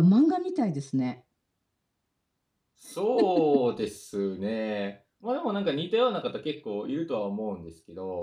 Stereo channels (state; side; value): identical; both; correlation 1.00